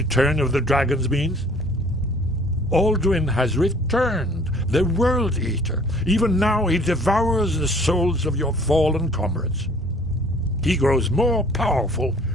of the dragons means? Alduin has returned, the World Eater. Even now he devours the souls of your fallen comrades. He grows more powerful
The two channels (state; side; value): normal; both; correlation 0.54